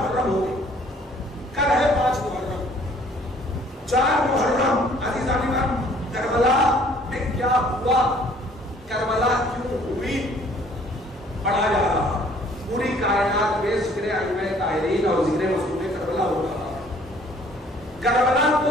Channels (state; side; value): normal; both; correlation 0.58